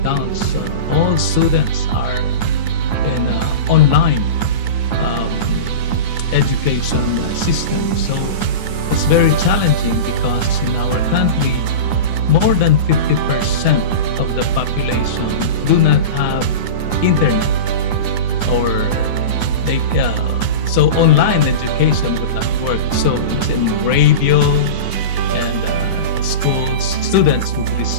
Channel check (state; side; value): late; right; 9.7 ms